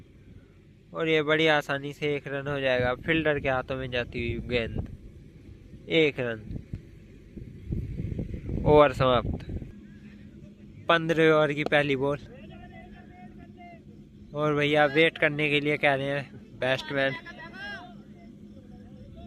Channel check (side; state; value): both; identical; correlation 1.00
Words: और ये बड़ी आसानी से 1 रन हो जाएगा, फील्डर के हाथों में जाती हुई गेंद, 1 रन, ओवर समाप्त। 15 ओवर की पहली बॉल, और भैया वेट करने के लिए कह रहे हैं बैट्समैन,